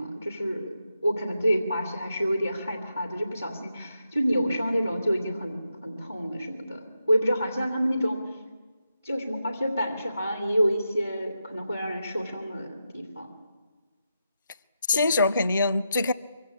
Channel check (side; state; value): both; inverted; correlation -0.86